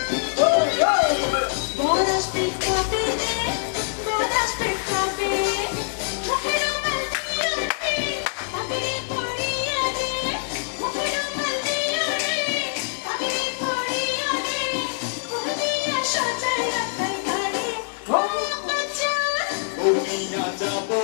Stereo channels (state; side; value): silent; right; 60 dB below the other